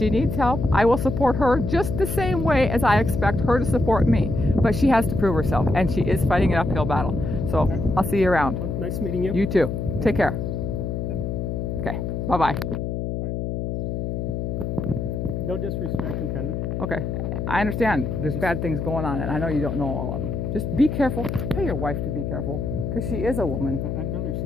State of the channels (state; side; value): noise; left; hum, 3 dB below the sound